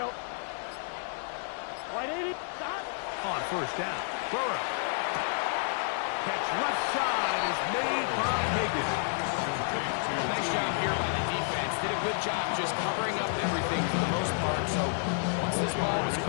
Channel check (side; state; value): right; silent; digital silence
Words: 180. Stop. On 1st down, Burrow. Catch left side is made by Higgins. Nice job here by the defense. Did a good job just covering up everything for the most part. So once this ball was